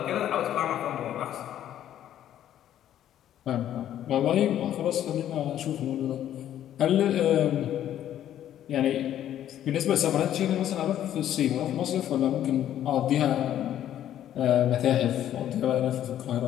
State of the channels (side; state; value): right; quieter; 11.3 dB